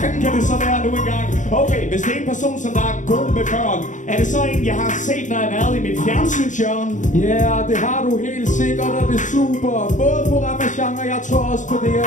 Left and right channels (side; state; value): right; late; 0.36 ms